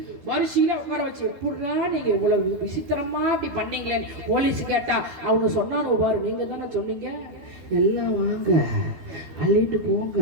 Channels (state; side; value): late; left; 12 ms